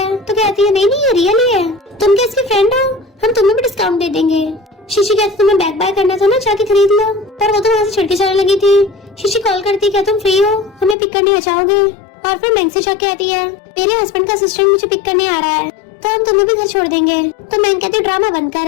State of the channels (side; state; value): right; drops out; at 11.0 s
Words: तो कहती है नहीं ये रियल ही है, तुम क्या इसके फ्रेंड हो, हम तुम्हें भी डिस्काउंट दे देंगे। शीशी कहती तुम्हें बैग बाय करना था ना, जाके खरीद लो, पर वो तो वहाँ से छिड़के जाने लगी थी। शीशी कॉल करती क्या तुम फ्री हो, हमें पिक करने आ जाओगे। और फिर मैंग से जाके कहती है मेरे हस्बैंड का असिस्टेंट मुझे पिक करने आ रहा है, तो हम तुम्हें भी घर छोड़ देंगे। तो मैंग कहती ड्रामा बंद